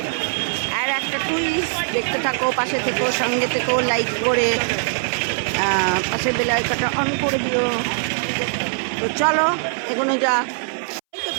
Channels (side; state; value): left; silent; 63 dB below the other